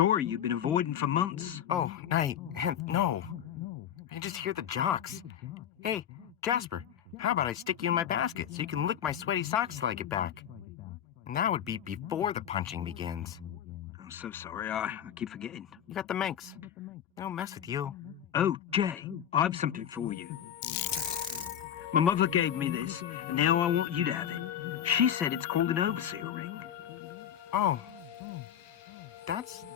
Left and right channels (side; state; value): right; quieter; 9.7 dB